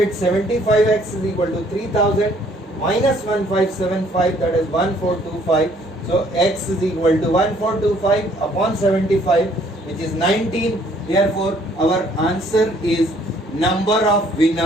75x is equal to 3000 minus 1575, that is 1425. So x is equal to 1425 upon 75, which is 19. Therefore our answer is number of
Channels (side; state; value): both; normal; correlation 0.62